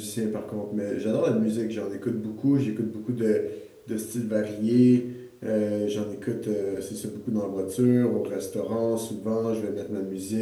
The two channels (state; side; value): identical; both; correlation 1.00